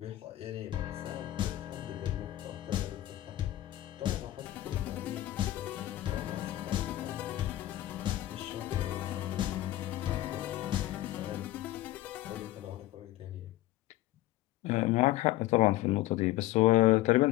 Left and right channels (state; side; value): quieter; right; 15.8 dB